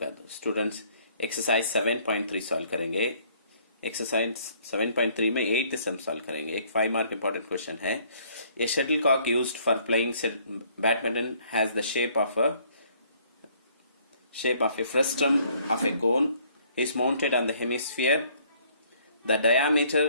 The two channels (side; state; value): both; inverted; correlation -0.62